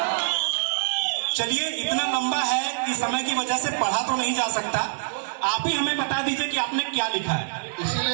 चलिए, इतना लंबा है कि समय की वजह से पढ़ा तो नहीं जा सकता। आप ही हमें बता दीजिए कि आपने क्या लिखा है।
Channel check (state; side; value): silent; left; digital silence